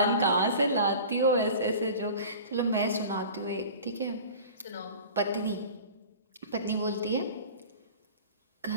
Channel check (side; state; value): both; inverted; correlation -0.39